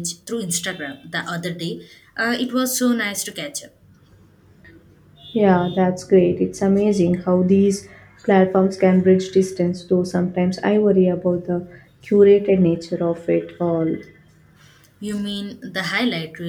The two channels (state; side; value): identical; both; correlation 1.00